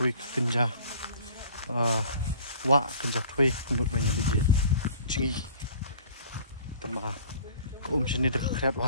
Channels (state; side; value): inverted; both; correlation -0.49